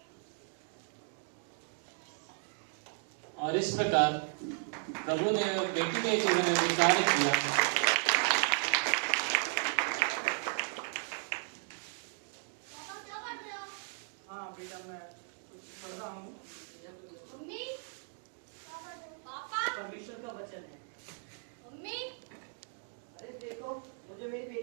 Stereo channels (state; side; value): silent; left; 54 dB below the other